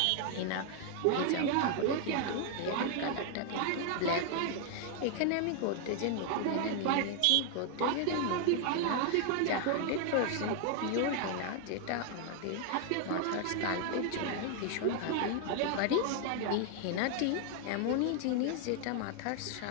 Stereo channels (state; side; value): different; both; correlation 0.00